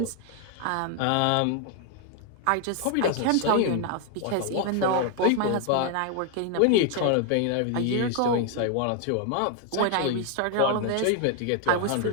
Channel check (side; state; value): both; different; correlation 0.00